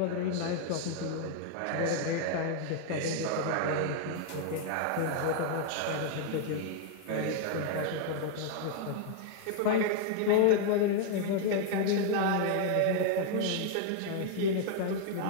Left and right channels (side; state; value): both; different; correlation 0.00